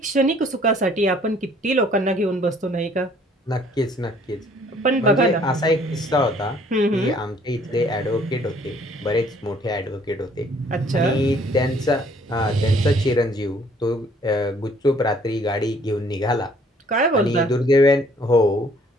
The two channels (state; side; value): normal; both; correlation 0.60